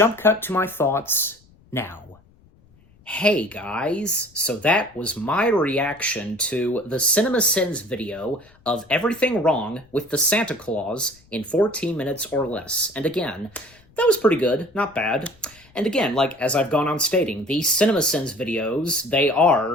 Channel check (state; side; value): noise; left; rumble, 29 dB below the sound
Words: cut to my thoughts now. Hey guys, so that was my reaction to the CinemaSins video of everything wrong with the Santa Claus in 14 minutes or less. And again, that was pretty good, not bad. And again, like, as I've gone on stating, these CinemaSins videos, they